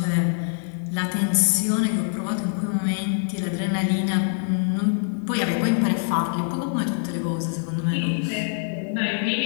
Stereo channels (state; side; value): silent; right; digital silence